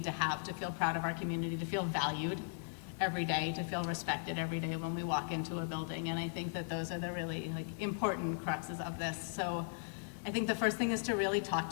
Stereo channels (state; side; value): silent; right; digital silence